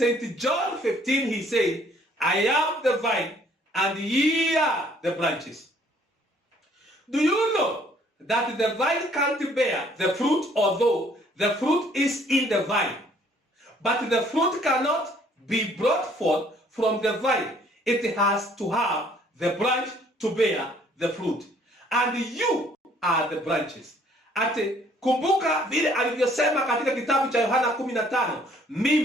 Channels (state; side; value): normal; both; correlation 0.61